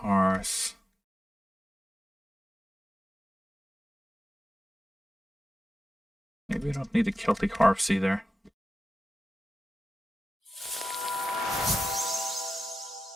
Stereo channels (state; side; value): normal; both; correlation 0.92